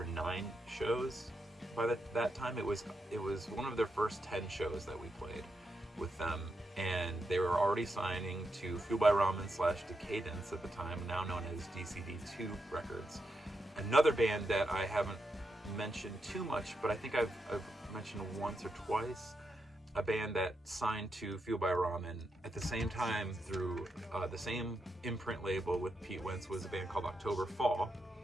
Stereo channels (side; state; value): both; normal; correlation 0.84